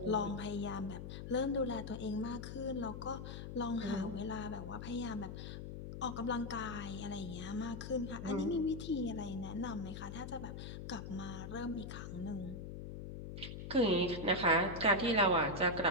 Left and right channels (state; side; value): noise; left; hum, 8 dB below the sound